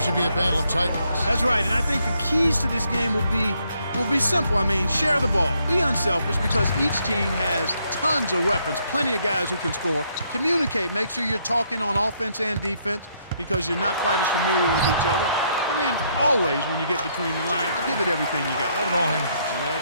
be a battle of titans. That's right, and I think the keys to this game will be simple. I mean, share the ball. Be unselfish because each team has tons of weapons, plenty of guys who can score. Communicate. Make sure you're talking on offense and defense because you're not quite as familiar with each other. And then always, when you get between the lines, give it everything you got. Let it all hang. Let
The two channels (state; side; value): inverted; both; correlation -0.73